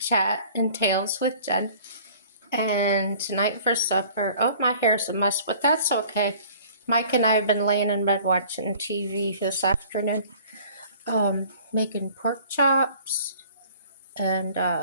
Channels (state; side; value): inverted; both; correlation -0.50